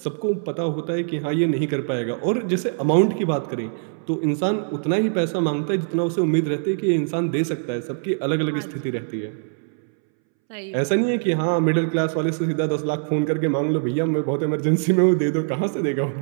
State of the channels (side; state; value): left; silent; 64 dB below the other